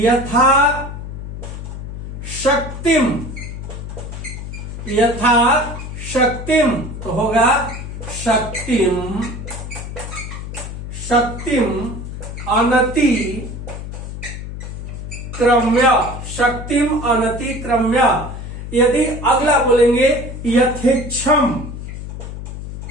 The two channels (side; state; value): left; noise; hum, 8 dB below the sound